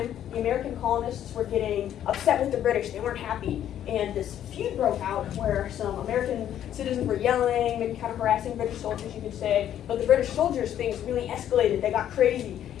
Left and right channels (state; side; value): quieter; right; 10.8 dB